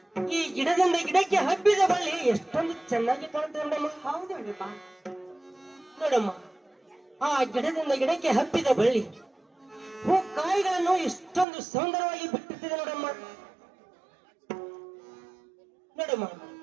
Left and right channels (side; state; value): left; drops out; at 11.5 s